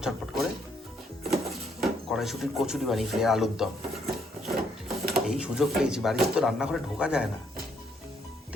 ঝটপট করে কড়াইশুটির কচুরি বানিয়েছি, আলুর দম। এই সুযোগ পেয়েছি, বাড়িতে তো রান্নাঘরে ঢোকা যায় না,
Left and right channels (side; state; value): both; normal; correlation 0.71